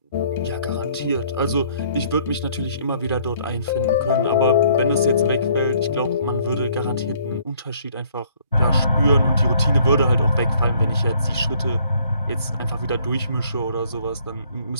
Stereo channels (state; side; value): inverted; both; correlation -0.62